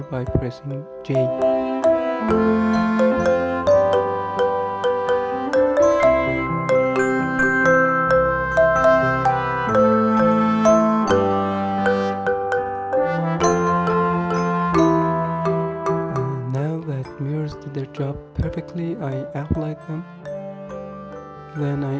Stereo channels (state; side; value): identical; both; correlation 1.00